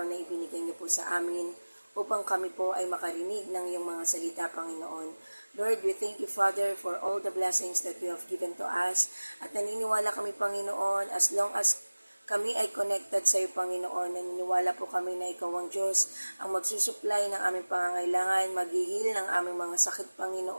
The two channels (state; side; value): inverted; both; correlation -1.00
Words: na ibinigay niyo po sa amin upang kami po ay makarinig ng iyong mga salita, Panginoon. Lord, we thank you, Father, for all the blessings that you have given to us. At naniniwala kami, Panginoon, as long as kami ay connected sa iyo, Panginoon. Naniniwala po kami na ikaw ang Diyos ang magsusupply ng aming pangangailangan, maghihil ng aming mga sakit,